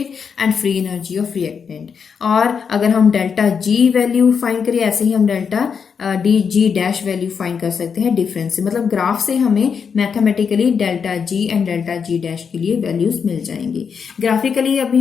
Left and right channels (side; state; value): right; quieter; 6.4 dB